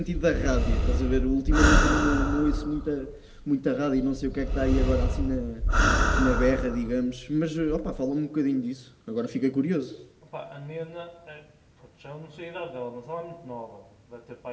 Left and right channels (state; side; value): identical; both; correlation 1.00